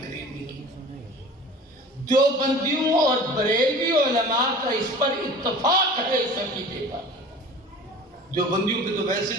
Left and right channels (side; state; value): both; normal; correlation 0.41